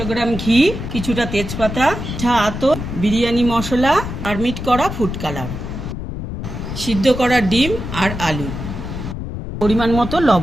গ্রাম ঘি, কিছুটা তেজপাতা, আতর, বিরিয়ানি মশলা, আর মিট করা ফুড কালার, সিদ্ধ করা ডিম আর আলু, পরিমাণ মতো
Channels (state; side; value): noise; left; rumble, 6 dB below the sound